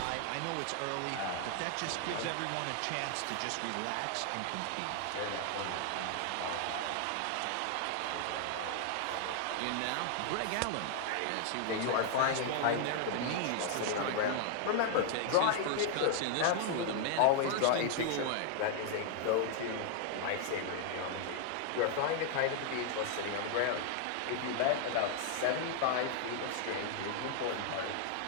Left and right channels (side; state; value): both; different; correlation 0.00